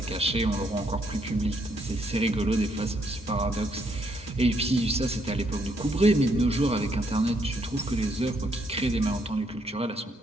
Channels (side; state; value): both; normal; correlation 0.72